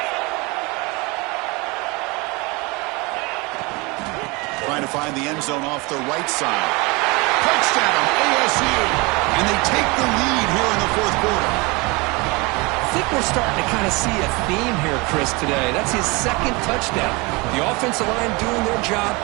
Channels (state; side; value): quieter; left; 26.1 dB